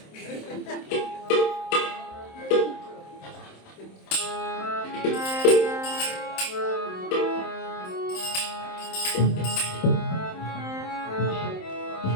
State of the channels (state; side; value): late; right; 27 ms